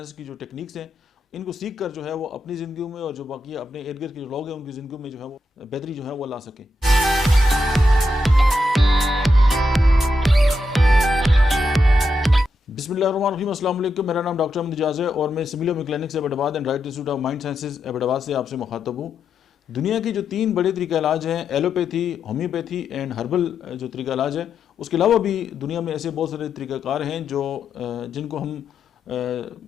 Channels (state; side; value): normal; both; correlation 0.84